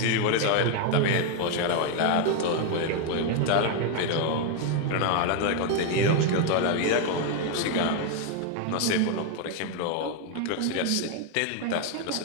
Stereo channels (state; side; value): different; both; correlation 0.01